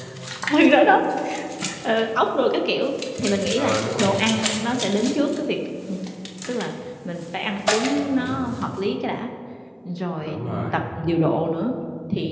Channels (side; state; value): both; identical; correlation 1.00